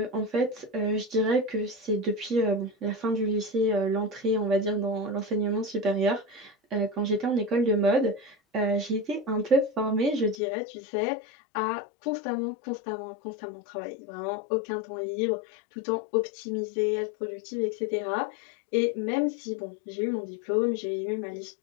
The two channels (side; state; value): right; drops out; at 10.4 s